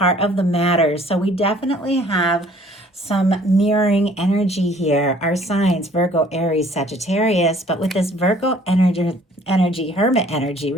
of the matter. So we definitely have some mirroring energy here. Our signs, Virgo, Aries, Sagittarius, but with this Virgo energy, Hermit energy,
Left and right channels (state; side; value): normal; both; correlation 0.56